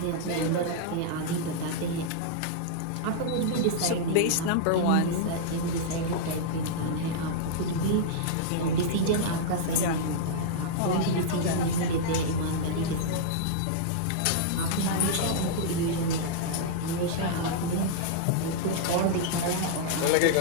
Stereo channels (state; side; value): different; both; correlation -0.02